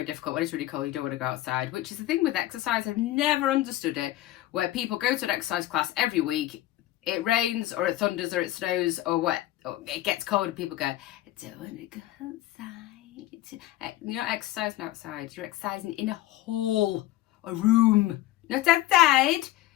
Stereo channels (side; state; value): right; quieter; 15.2 dB